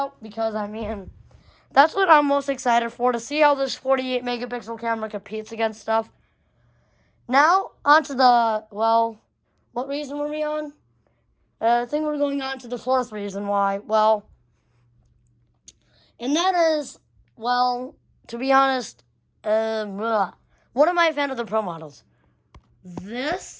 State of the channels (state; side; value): identical; both; correlation 1.00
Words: because, I mean, that's what I'm most excited for, to see how this 48 megapixel camera competes against stuff. Now, onto the, well, what reason were we on? I think we're going on to the 4th reason why. Well, and that is, well, to be honest, what am I a fan of the Pro models?